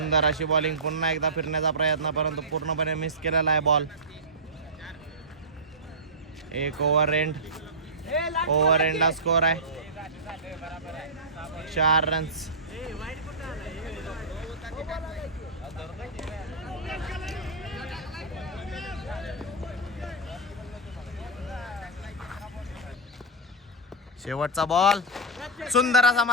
अशी बॉलिंग. पुन्हा एकदा फिरण्याचा प्रयत्न परंतु पूर्णपणे मिस केलेला आहे बॉल. एक ओव्हर एंडला स्कोर आहे 4 रन्स. शेवटचा बॉल. सुंदर असा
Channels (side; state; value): both; normal; correlation -0.13